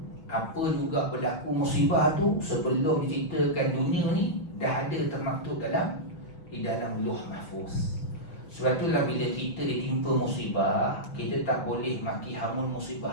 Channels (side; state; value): right; late; 6.1 ms